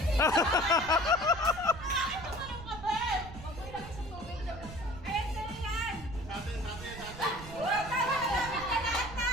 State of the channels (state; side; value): noise; right; rumble, 13 dB below the sound